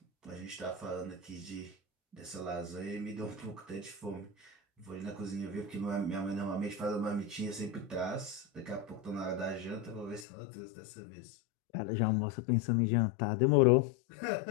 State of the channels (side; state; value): right; drops out; at 10.2 s